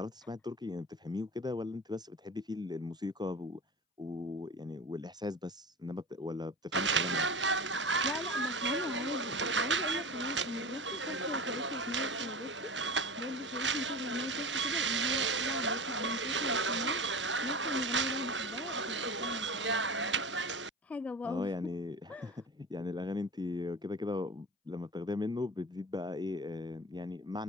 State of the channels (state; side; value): normal; both; correlation 0.31